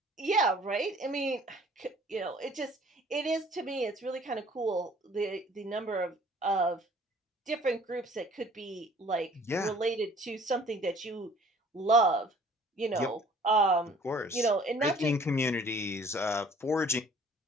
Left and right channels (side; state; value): both; normal; correlation 0.53